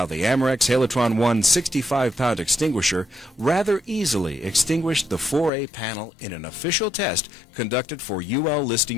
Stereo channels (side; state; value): right; drops out; at 5.5 s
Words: the AMEREX Halotron 1 65-pound extinguisher rather easily extinguished the 4A panel in an official test conducted for UL